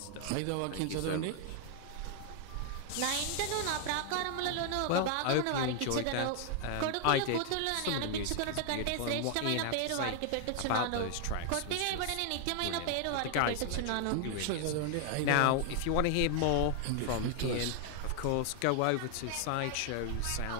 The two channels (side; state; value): both; different; correlation 0.00